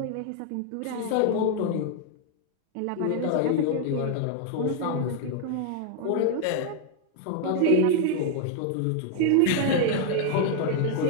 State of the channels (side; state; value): both; different; correlation 0.00